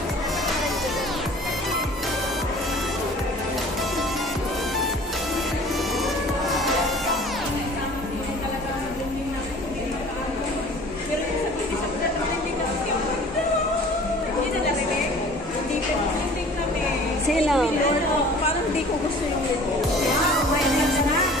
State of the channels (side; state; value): both; normal; correlation 0.47